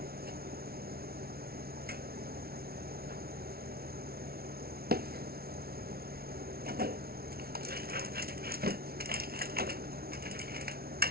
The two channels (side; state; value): left; late; 0.44 ms